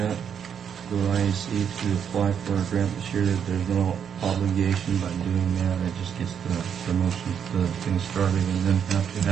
to IAC to apply for a grant this year. There's no obligation by doing that. It just gets the promotion, the thing started, and then have to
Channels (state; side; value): quieter; left; 7.9 dB